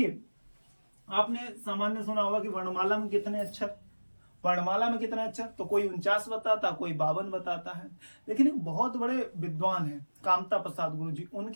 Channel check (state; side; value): inverted; both; correlation -1.00